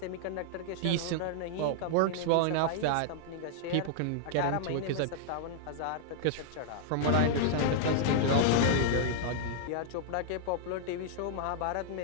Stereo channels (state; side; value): different; both; correlation -0.01